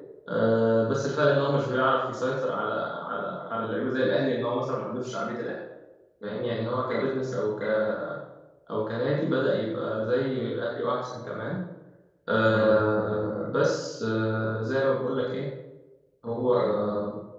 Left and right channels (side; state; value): both; identical; correlation 1.00